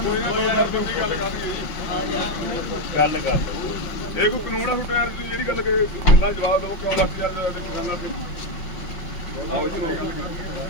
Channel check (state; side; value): late; right; 5.7 ms